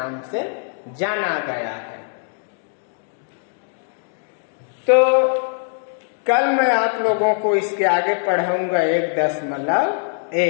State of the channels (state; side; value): silent; right; 65 dB below the other